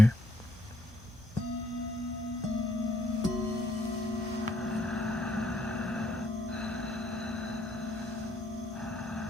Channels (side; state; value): both; normal; correlation 0.69